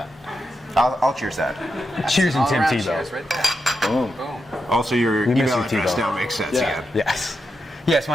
I'll cheers that. Cheers and All Tim around Tebow. cheers right there. Boom. Boom. Also, your We miss email you, address Tebow. now makes sense Yeah. again. Yes. Yes,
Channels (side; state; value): both; normal; correlation 0.86